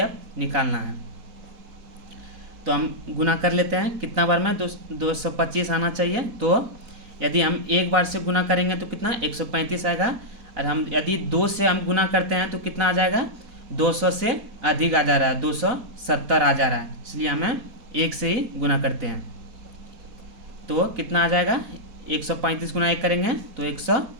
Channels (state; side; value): late; left; 4.2 ms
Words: निकालना है। तो हम गुना कर लेते हैं। कितना बार में? 225 आना चाहिए। तो यदि हम 1 बार से गुना करेंगे तो कितना? 135 आएगा। और हम यदि 2 से हम गुना करते हैं तो कितना आ जाएगा? 200 से अधिक आ जा रहा है, 270 आ जा रहा है, इसलिए हमें 1 से ही गुना करते हैं। तो कितना आ जाएगा? 135 गुना 1 करेंगे तो